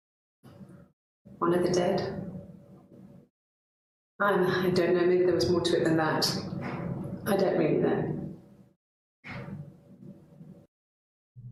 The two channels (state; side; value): identical; both; correlation 1.00